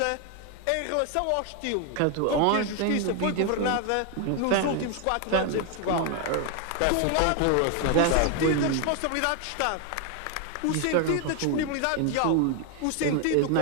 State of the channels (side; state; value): both; different; correlation 0.01